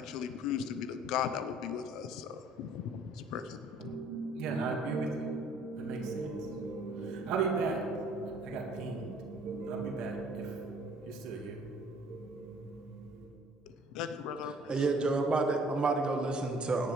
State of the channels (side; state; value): both; normal; correlation 0.56